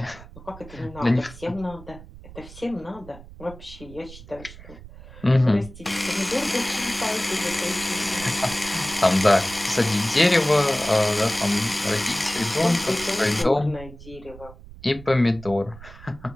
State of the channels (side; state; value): right; noise; rumble, 17 dB below the sound